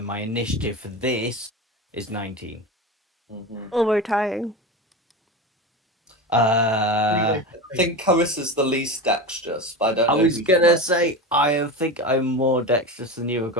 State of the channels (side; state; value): both; normal; correlation 0.24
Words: my initiative for this is 19. Oh, we're tying. I think Carissa's the least dexterous, but I don't I know. was who's gonna most. say I think I'm more dexterous than you. I've